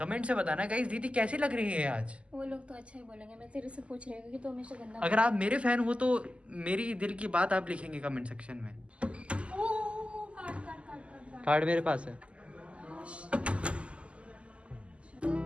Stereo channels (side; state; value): left; late; 0.057 ms